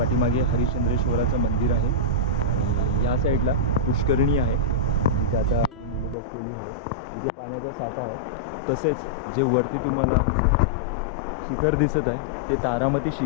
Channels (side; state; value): right; drops out; at 6.2 s